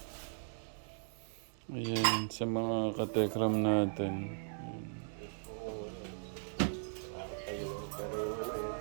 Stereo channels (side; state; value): left; silent; digital silence